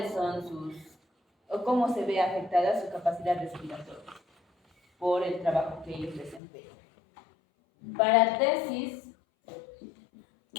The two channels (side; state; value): right; drops out; at 6.4 s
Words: son sus, o cómo se ve afectada su capacidad respiratoria por el trabajo que ellos desempeñan. Para tesis